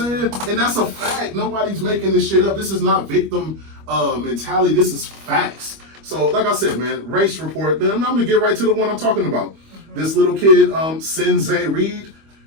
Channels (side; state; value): left; late; 25 ms